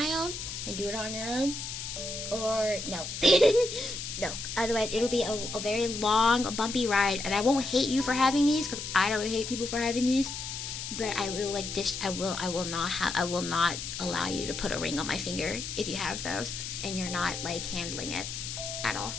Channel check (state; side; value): noise; left; hiss, 6 dB below the sound